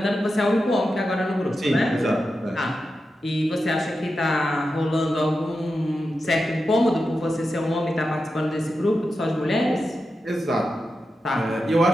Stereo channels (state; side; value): normal; both; correlation 0.90